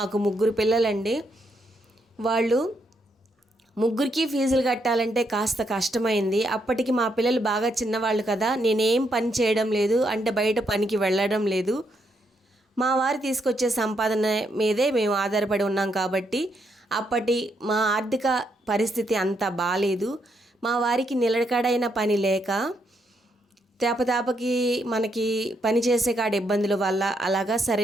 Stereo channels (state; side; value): normal; both; correlation 0.77